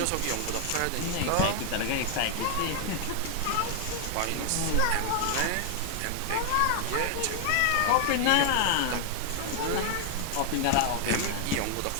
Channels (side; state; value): both; different; correlation 0.00